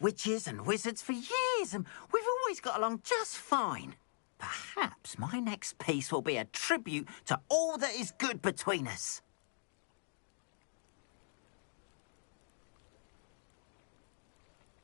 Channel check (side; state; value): right; silent; digital silence